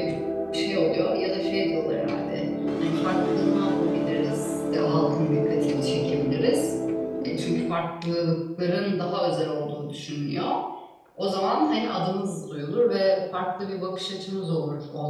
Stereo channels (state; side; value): identical; both; correlation 1.00